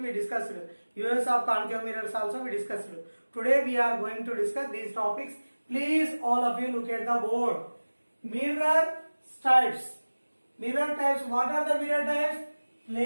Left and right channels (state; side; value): inverted; both; correlation -1.00